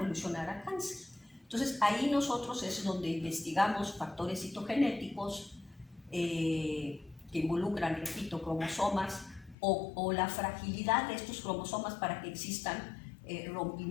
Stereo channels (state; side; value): drops out; right; at 9.6 s